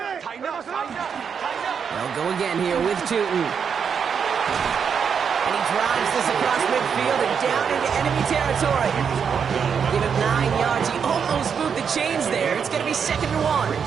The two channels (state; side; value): quieter; left; 6.8 dB